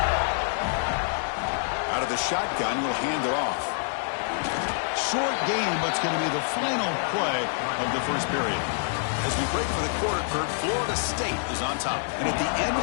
Out of the shotgun, will hand it off. Short game, but it's going to be the final play of the 1st period. As we break for the quarter, Kurt, Florida State is on top. And at the end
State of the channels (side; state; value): right; silent; digital silence